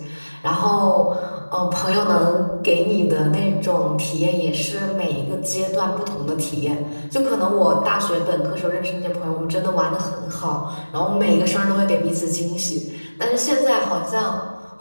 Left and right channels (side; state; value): both; inverted; correlation -1.00